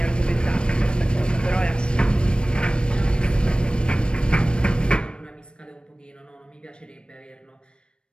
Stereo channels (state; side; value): late; right; 0.055 ms